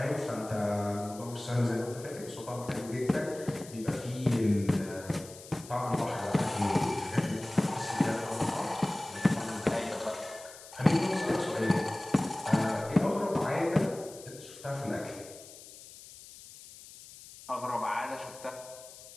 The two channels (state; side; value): noise; left; hiss, 17 dB below the sound